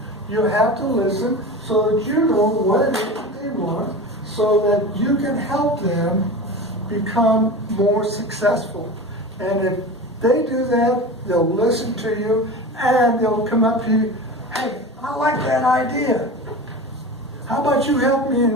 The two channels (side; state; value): both; normal; correlation 0.31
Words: You have to listen so that you know what it is that they want, so that you can help them become more successful. And if they do that, they'll listen to you and they'll come up to you, hey, I like that idea. How about you help me